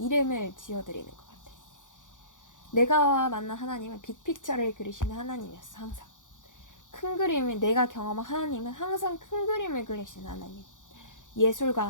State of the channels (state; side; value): late; right; 0.87 ms